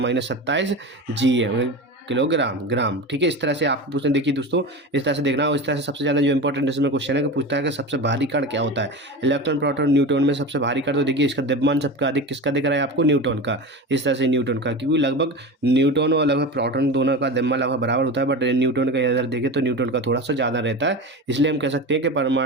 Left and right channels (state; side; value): normal; both; correlation 0.27